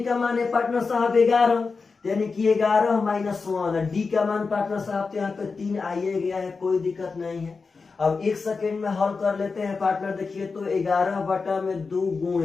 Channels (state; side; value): quieter; right; 4.6 dB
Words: का मान है पार्टनर साहब 11, यानी कि 11 -1। डी का मान पार्टनर साहब तो यहाँ पे 3 आइए गया है, कोई दिक्कत नहीं है। अब 1 सेकेंड में हल कर लेते हैं पार्टनर। देखिए तो 11/2